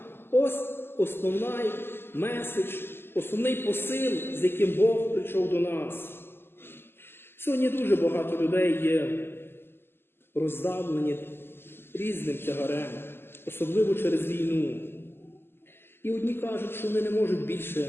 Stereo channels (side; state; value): right; late; 0.11 ms